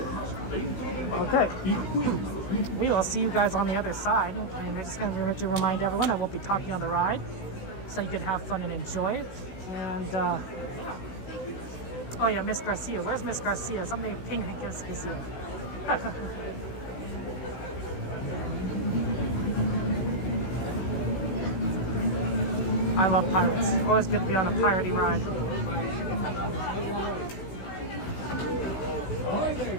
Okay. We will see you guys on the other side, and I'm just gonna remind everyone I won't be talking on the ride, so you can have fun and enjoy it. And yeah. Oh yeah, Miss Garcia. Where's Miss Garcia? Something ping is here. I love pirates. Always good to be on a piratey ride. Ahoy there,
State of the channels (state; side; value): late; right; 16 ms